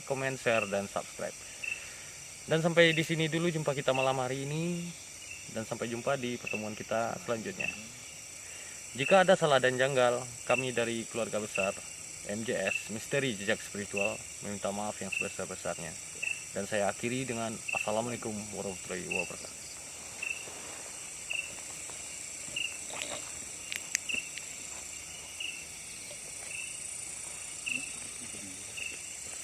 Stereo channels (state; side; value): identical; both; correlation 1.00